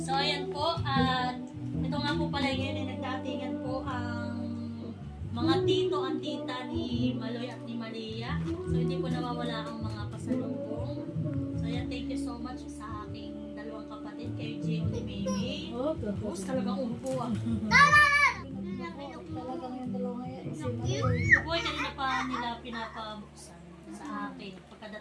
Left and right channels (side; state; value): both; identical; correlation 1.00